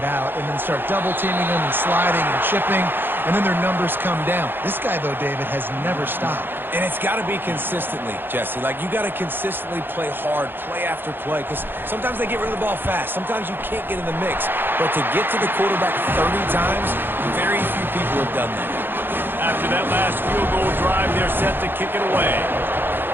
out and then start double-teaming them and sliding and chipping, and then their numbers come down. This guy, though, David, has never stopped. And it's got to be consistently, Jesse. Like, you got to consistently play hard, play after play, because sometimes they get rid of the ball fast. Sometimes you can't get in the mix. But to get to the quarterback 30 times, very few people have done that. After that last field goal drive, they're set to kick it away.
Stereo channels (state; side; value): late; left; 0.10 ms